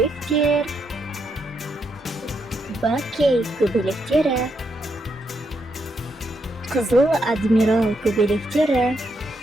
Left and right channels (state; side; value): normal; both; correlation 0.79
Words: бакей көбелектері, қызыл адмирал көбелектері.